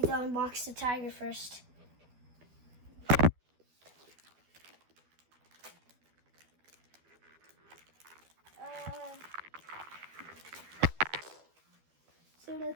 to unbox the tiger first. So the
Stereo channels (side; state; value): left; late; 12 ms